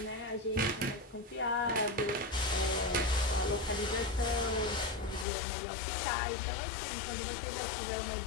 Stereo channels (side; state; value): right; drops out; at 5.2 s